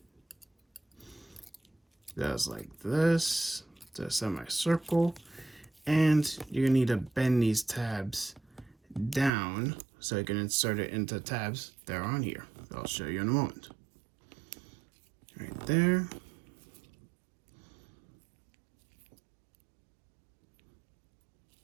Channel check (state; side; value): drops out; left; at 9.3 s